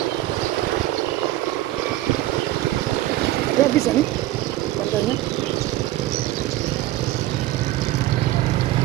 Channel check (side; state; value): left; quieter; 15.6 dB